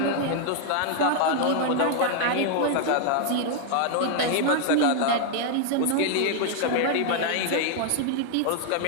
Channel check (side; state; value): both; different; correlation 0.00